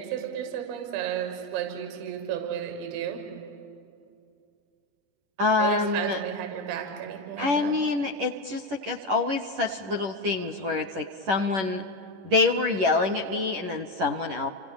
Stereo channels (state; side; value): late; left; 11 ms